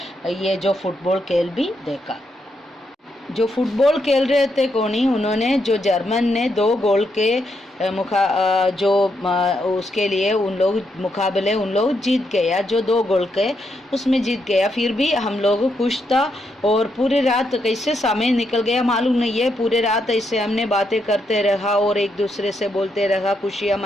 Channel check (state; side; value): normal; both; correlation 0.80